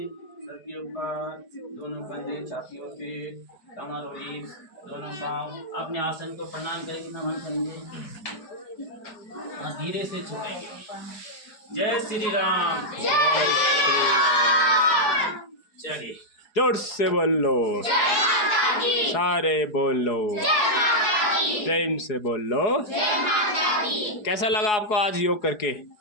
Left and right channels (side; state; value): right; late; 4.7 ms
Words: सबके ऊपर, दोनों कंधे, छातियों पे, कमर और रीढ़, दोनों पांव। अपने आसन को प्रणाम करके नमन करेंगे और धीरे से छोड़ेंगे। जय श्री राम। चलिए जोर से बोलो, सारे बोलो, प्रेम से बोलो। कैसा लगा आपको आज योग करके?